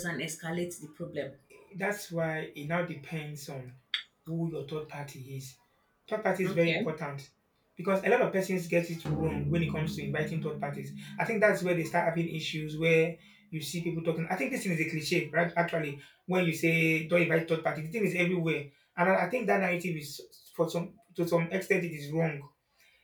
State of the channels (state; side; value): identical; both; correlation 1.00